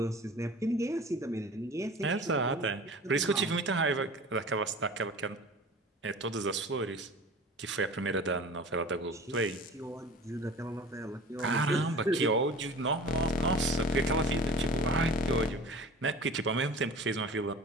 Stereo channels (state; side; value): normal; both; correlation 0.40